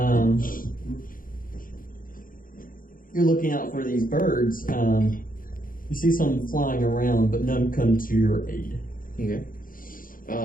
You're looking out for these birds. You see some flying around, but none come to your aid. Okay.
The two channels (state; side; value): late; right; 0.40 ms